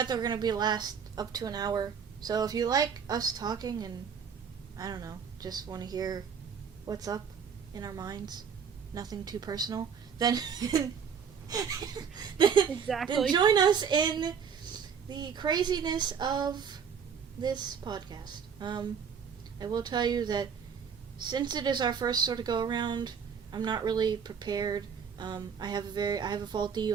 they're going to be last up to an hour. So if you like us talking and, I don't know, just want to hear what's up in our minds, nothing too personal, then Exactly. then join us in the craziness of this podcast. I will tell you that since it is our first sort of go around, I'm not really prepared. I have a faulty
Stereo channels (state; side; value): quieter; left; 6.9 dB